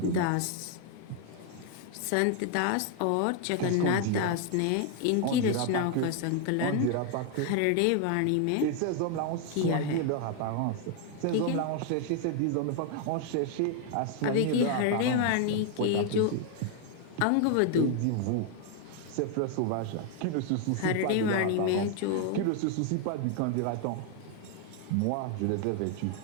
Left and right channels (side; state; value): both; different; correlation 0.00